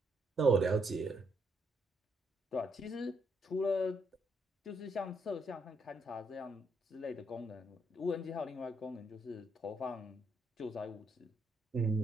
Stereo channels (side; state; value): both; normal; correlation 0.75